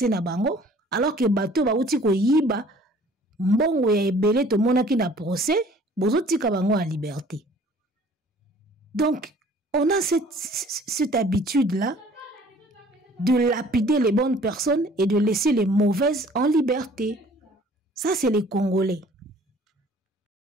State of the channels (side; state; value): both; normal; correlation 0.53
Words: na bango alors que bato bauti ko yiba mbongo ya ebele to monaki na procès bozo tika bango en liberté. Donc on a cette habitude là de lapider les bonnes personnes et de laisser les mauvaises en liberté. Ça c'est les Congolais.